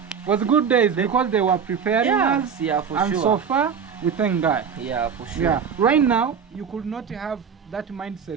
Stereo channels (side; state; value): left; quieter; 6.9 dB